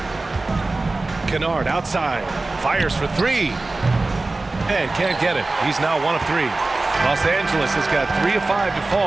Kennard outside. Fires for 3. And can't get it. He's now 1 of 3. Los Angeles has got 3 of 5 to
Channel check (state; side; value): quieter; left; 3.2 dB